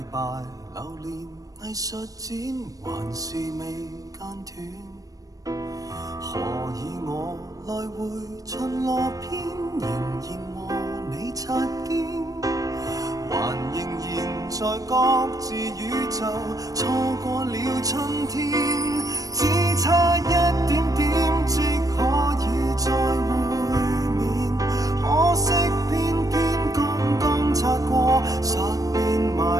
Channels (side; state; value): left; late; 0.17 ms